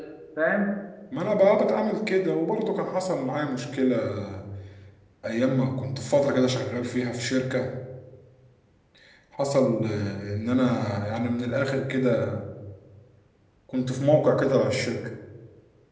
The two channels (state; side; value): identical; both; correlation 1.00